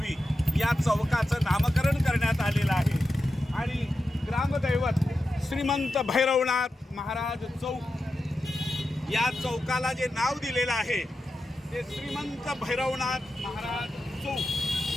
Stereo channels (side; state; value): both; normal; correlation 0.90